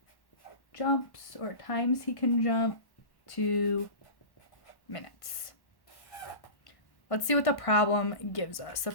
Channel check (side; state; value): right; late; 1.1 ms